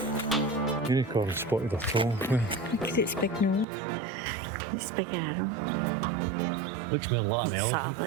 Unicorn spotted a troll. Look at its big nose. Its big arm. Looks more like an Sort elephant. of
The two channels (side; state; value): left; drops out; at 3.7 s